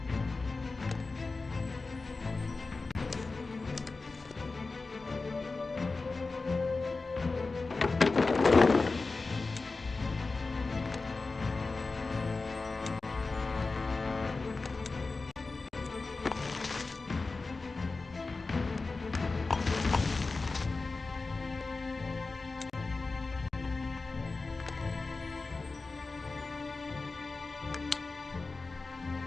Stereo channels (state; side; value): quieter; right; 3.8 dB